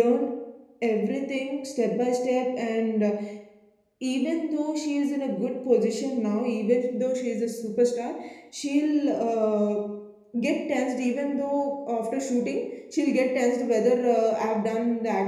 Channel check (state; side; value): identical; both; correlation 1.00